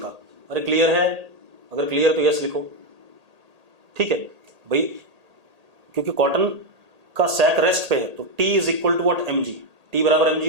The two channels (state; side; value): late; left; 1.8 ms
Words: अरे क्लियर है, अगर क्लियर तो यस लिखो, ठीक है भाई, क्योंकि कॉटन का सैक रेस्ट पे है, तो T is equal to what, mg। T बराबर mg